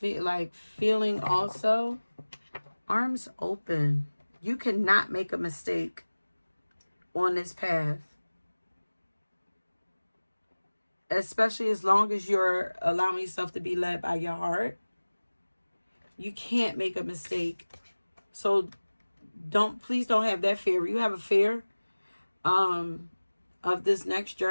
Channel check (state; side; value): inverted; both; correlation -1.00